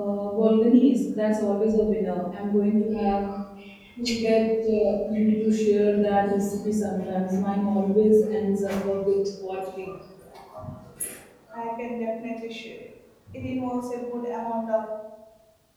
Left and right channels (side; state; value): both; identical; correlation 1.00